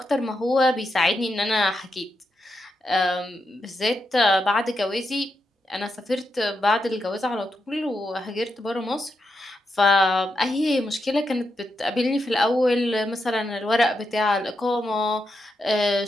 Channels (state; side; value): normal; both; correlation 0.85